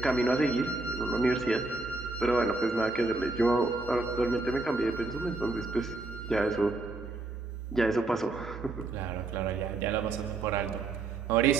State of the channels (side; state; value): left; quieter; 3.2 dB